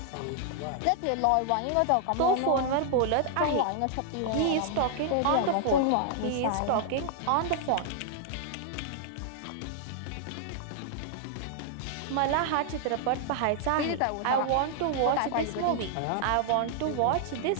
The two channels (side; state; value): both; different; correlation -0.01